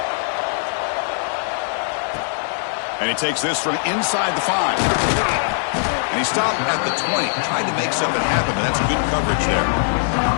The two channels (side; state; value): right; silent; 65 dB below the other